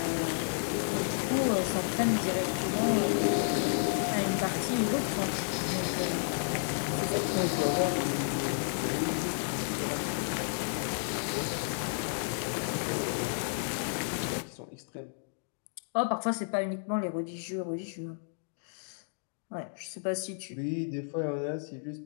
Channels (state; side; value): silent; right; digital silence